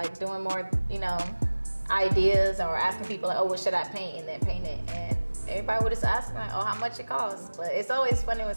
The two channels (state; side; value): inverted; both; correlation -1.00